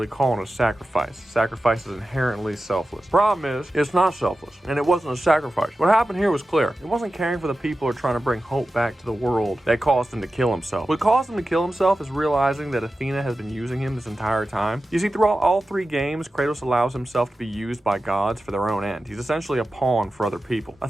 calling it a sacrifice. Sacrifice is inherently selfless. Problem is, it's not selfless, and it wasn't a sacrifice. What happened here was clear. It wasn't caring for the people or trying to bring hope back to the world that caused him to kill himself. What caused him to kill himself is realizing that Athena has been using him this entire time. You see, throughout all three games, Kratos allows himself to be used by gods for their own end. He's essentially a pawn for other people.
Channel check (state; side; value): normal; both; correlation 0.93